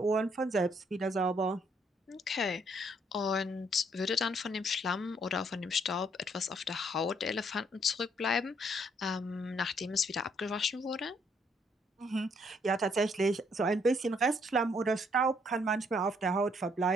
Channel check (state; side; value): normal; both; correlation 0.68